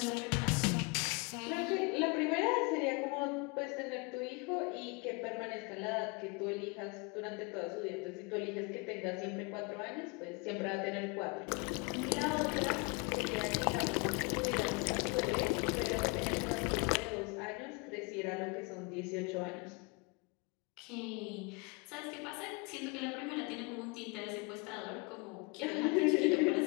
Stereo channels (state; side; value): quieter; right; 30.1 dB